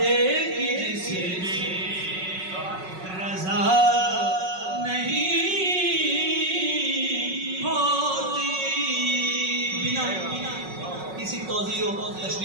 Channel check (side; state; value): left; late; 5.4 ms